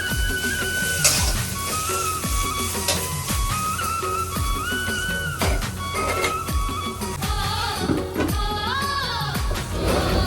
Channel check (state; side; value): identical; both; correlation 1.00